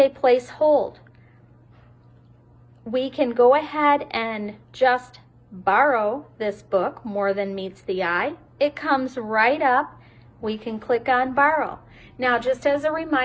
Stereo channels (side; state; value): both; identical; correlation 1.00